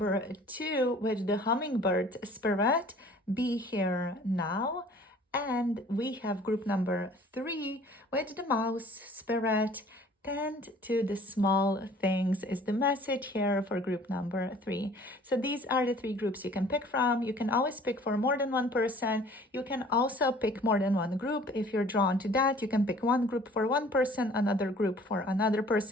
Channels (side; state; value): both; normal; correlation 0.51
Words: two with the Hummingbird spirit. Be here now. And we have group number three with the Mouse spirit. Tend to the small things is the message here for group number three. So these are the three groups you can pick from. You can always pick for more than one person. You can also pick more than one group. If you're drawn to that, you can pick one group for one person, another group for another